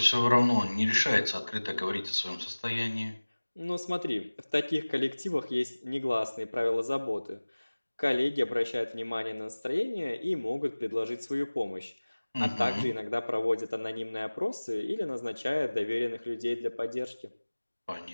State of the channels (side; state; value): both; inverted; correlation -1.00